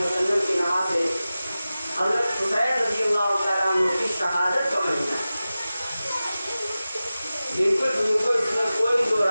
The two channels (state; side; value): inverted; both; correlation -0.96